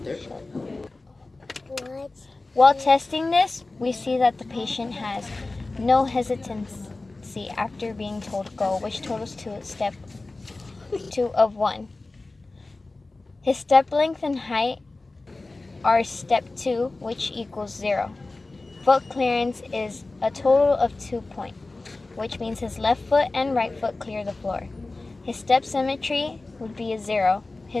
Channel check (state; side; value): quieter; right; 3.2 dB